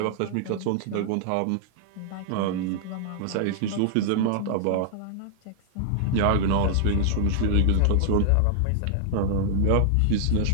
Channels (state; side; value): different; both; correlation -0.01